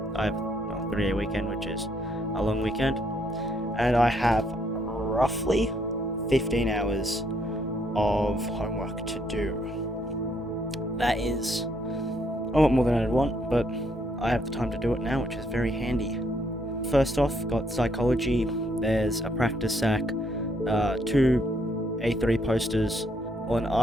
I have a 3-day weekend, which is a long weekend. And I have roughly 15 hours of homework to do. That is a lot more than I'd want, but I have the time to do it now, which is very handy. First off, got psychology. There's a practice sack, 2 A3 posters, or an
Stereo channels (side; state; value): both; normal; correlation 0.71